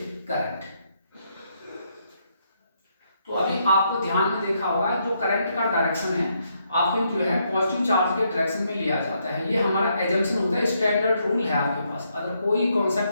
करंट। तो अभी आपको ध्यान में देखा होगा जो करंट का डायरेक्शन है आपके जो है पॉजिटिव चार्ज के डायरेक्शन में लिया जाता है, ये हमारा एजम्पशन होता है, स्टैंडर्ड रूल है आपके पास, अगर कोई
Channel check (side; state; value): both; inverted; correlation -0.76